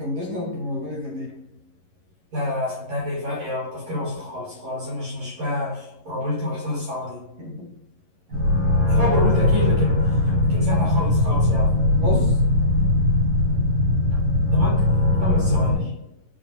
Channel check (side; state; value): left; late; 11 ms